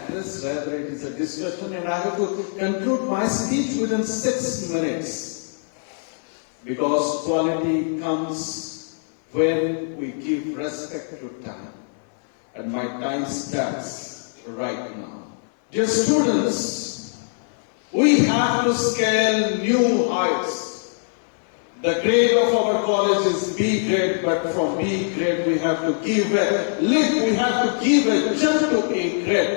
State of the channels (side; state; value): right; silent; 64 dB below the other